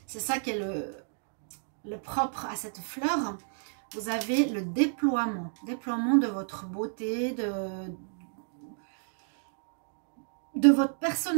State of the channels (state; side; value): silent; left; digital silence